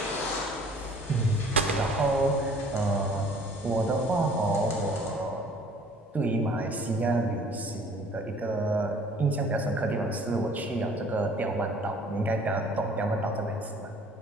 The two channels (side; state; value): both; normal; correlation 0.53